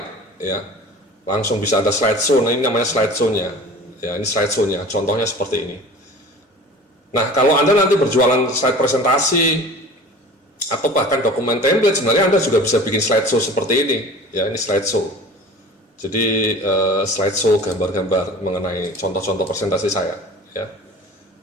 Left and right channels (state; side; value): normal; both; correlation 0.41